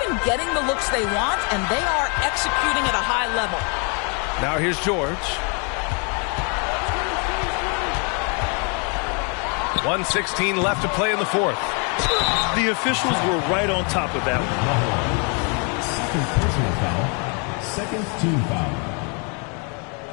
been getting the looks they want, and they are executing at a high level. Now here's George. 1:16 left to play in the fourth. The officials were right on top of that one. Second personal foul. Second team foul.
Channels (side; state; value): right; quieter; 35.9 dB